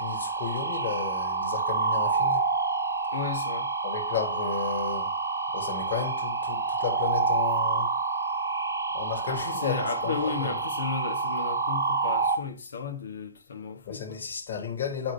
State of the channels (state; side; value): inverted; both; correlation -0.36